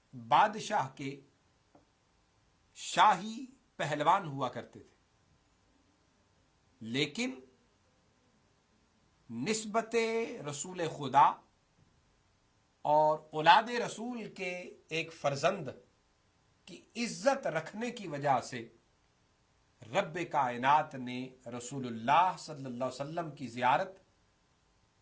بادشاہ کے شاہی پہلوان ہوا کرتے تھے، لیکن نسبت رسول خدا اور اولاد رسول کے ایک فرزند کی عزت رکھنے کی وجہ سے رب کائنات نے رسول اللہ صلی اللہ علیہ وسلم کی زیارت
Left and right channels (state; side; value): identical; both; correlation 1.00